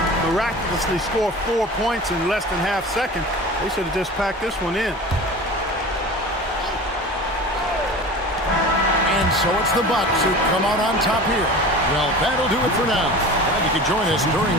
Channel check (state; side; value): normal; both; correlation 0.36